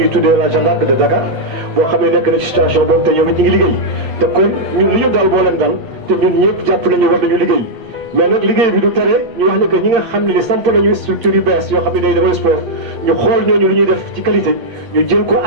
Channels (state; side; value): late; left; 8.2 ms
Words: tuddee la Jeanne d'Arc de Dakar boo xam ne nekk na ci situation boobu te ñoom it ñu ngi liggéey te kon ñun li ñu dal boo leen dal te ñun ñëpp jàpp nañu war nañu liggéey mais nag liggéey bi du tere ñu wax ne que ñi nga xam ne ni samp nañu structure yu bees yoo xam ne day defal sport ñu xool ñooñu lu ñuy def ci qualité ñu jël ko